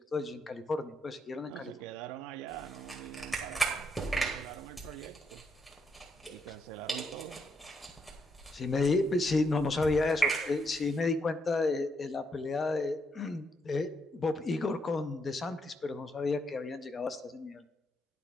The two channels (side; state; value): both; normal; correlation 0.78